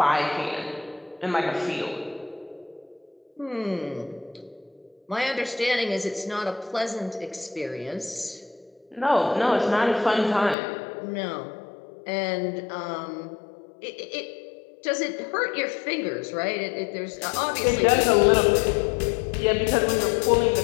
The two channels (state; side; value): drops out; right; at 10.6 s